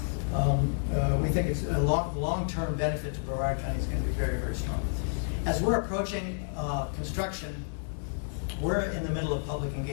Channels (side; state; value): right; silent; digital silence